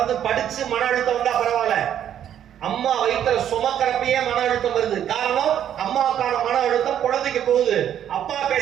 படிச்சு மன அழுத்தம் வந்தா பரவாயில்ல, அம்மா வயிற்றுல சுமக்கிறப்பயே மன அழுத்தம் வருது. காரணம், அம்மாவுக்கான மன அழுத்தம் குழந்தைக்கு போகுது, அப்பா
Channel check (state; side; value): quieter; left; 10.1 dB